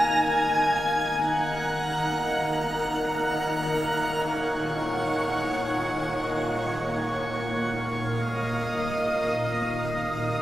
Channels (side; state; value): both; normal; correlation 0.91